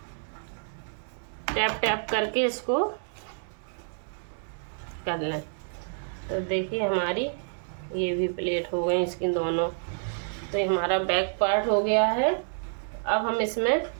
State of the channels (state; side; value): silent; left; digital silence